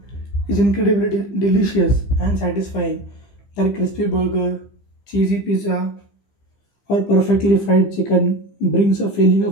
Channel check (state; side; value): late; right; 15 ms